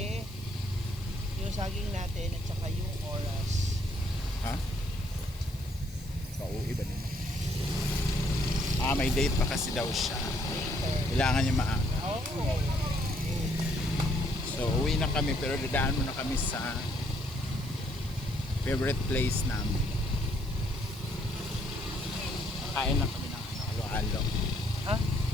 yung saging natin at saka yung oras. Ha? Pauwi ba nila? May date pa kasi daw siya. Kailangan niya maaga. Oh. So uwi na kami pero dadaan muna kami sa favorite place namin. Kain na kami ng halo-halo. Ha?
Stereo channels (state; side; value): noise; left; hiss, 21 dB below the sound